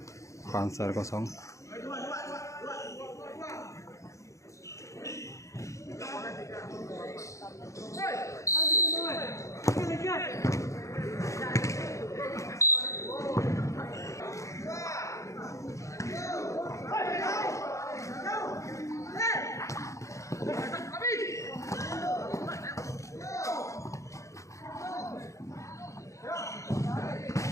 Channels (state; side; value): late; right; 0.15 ms